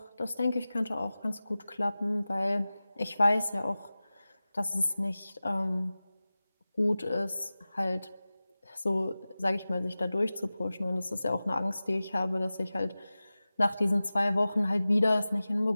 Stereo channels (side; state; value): both; inverted; correlation -0.97